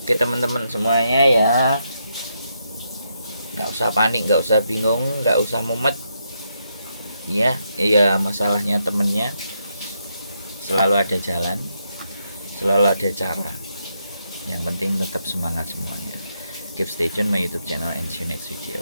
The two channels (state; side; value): inverted; both; correlation -0.80